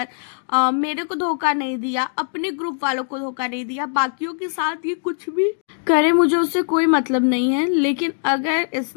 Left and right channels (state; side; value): silent; right; digital silence